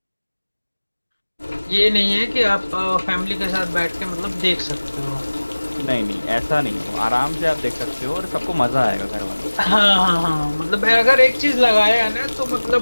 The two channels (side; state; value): both; inverted; correlation -1.00